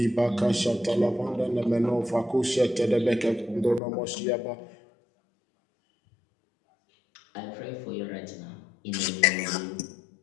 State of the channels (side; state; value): right; drops out; at 3.8 s